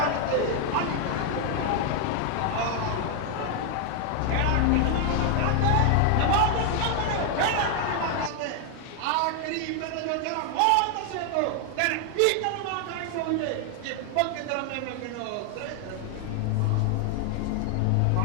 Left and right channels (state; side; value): different; both; correlation 0.00